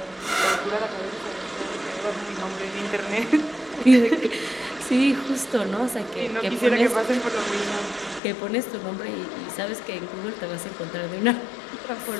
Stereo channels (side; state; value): right; drops out; at 8.2 s